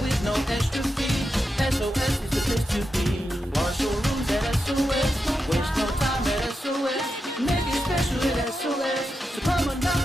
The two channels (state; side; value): normal; both; correlation 0.88